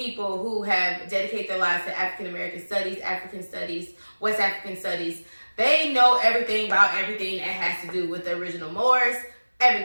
who have dedicated their lives to African American studies, African studies, West African studies. They know everything about everything that has to do with the original Moors,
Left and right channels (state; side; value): inverted; both; correlation -1.00